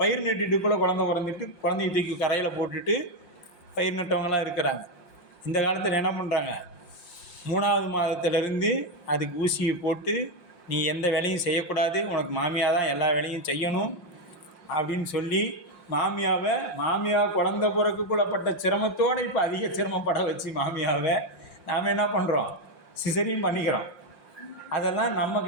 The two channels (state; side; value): late; right; 5.7 ms